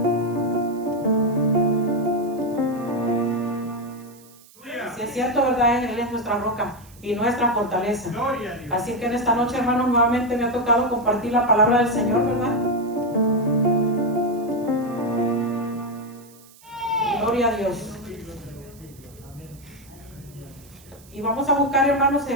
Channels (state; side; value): noise; right; hiss, 25 dB below the sound